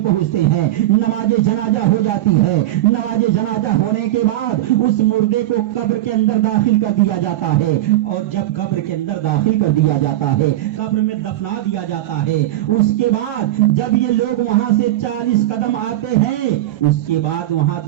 پہنچتے ہیں، نماز جنازہ ہو جاتی ہے، نماز جنازہ ہونے کے بعد اس مردے کو قبر کے اندر داخل کر دیا جاتا ہے، اور جب قبر کے اندر داخل کر دیا جاتا ہے، قبر میں دفنا دیا جاتا ہے، اس کے بعد جب یہ لوگ وہاں سے 40 قدم آتے ہیں، اس کے بعد وہاں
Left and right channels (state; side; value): quieter; left; 14.6 dB